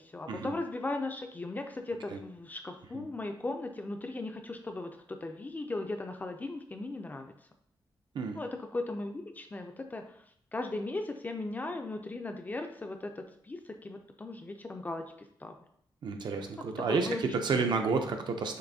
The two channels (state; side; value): normal; both; correlation 0.69